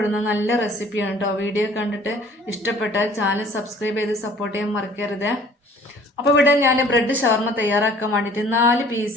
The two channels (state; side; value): normal; both; correlation 0.53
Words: നല്ല റെസിപ്പിയാണ് കേട്ടോ. വീഡിയോ കണ്ടിട്ട് ഇഷ്ടപ്പെട്ടാൽ ചാനൽ സബ്സ്ക്രൈബ് ചെയ്ത് സപ്പോർട്ട് ചെയ്യാൻ മറക്കരുത്. അപ്പോൾ ഇവിടെ ഞാൻ ബ്രെഡ് ഷവർമ തയ്യാറാക്കാൻ വേണ്ടിയിട്ട് 4